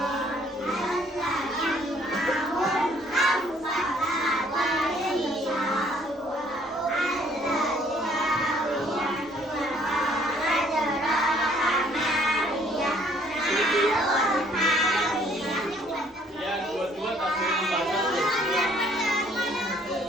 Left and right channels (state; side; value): normal; both; correlation 0.62